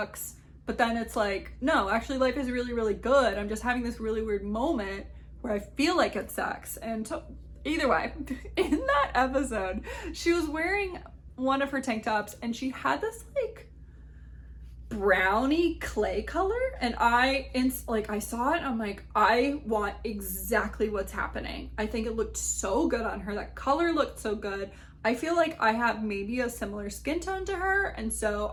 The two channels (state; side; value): identical; both; correlation 1.00